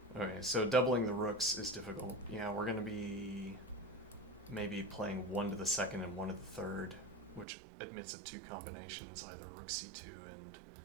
Okay, so doubling the rooks is difficult. Yeah, we're gonna be maybe playing one to the second and one to the third, which admits of two combinations, either rook c2 and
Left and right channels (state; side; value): drops out; left; at 7.5 s